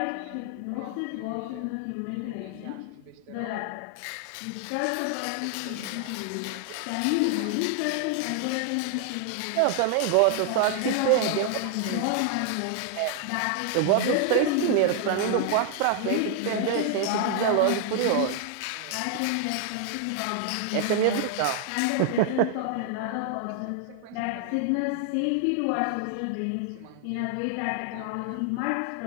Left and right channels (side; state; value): both; different; correlation 0.00